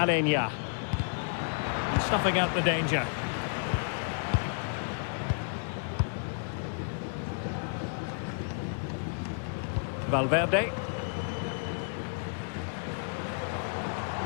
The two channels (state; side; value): silent; right; digital silence